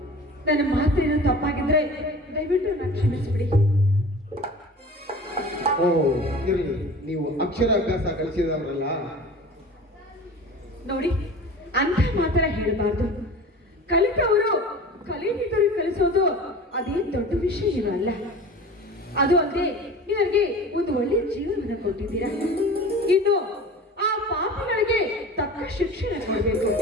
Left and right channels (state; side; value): normal; both; correlation 0.38